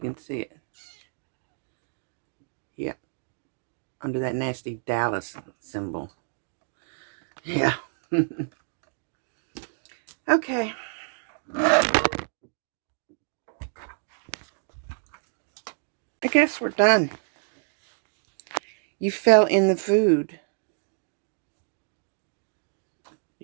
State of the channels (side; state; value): left; silent; digital silence